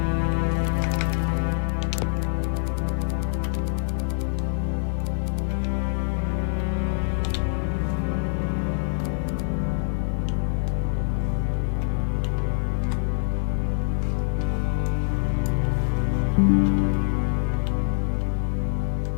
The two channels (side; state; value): right; silent; digital silence